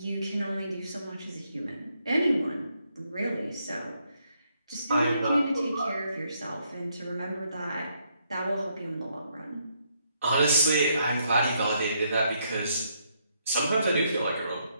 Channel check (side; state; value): both; inverted; correlation -0.74